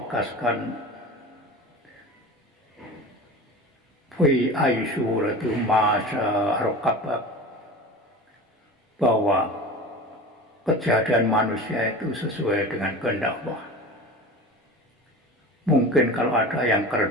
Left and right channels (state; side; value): normal; both; correlation 0.34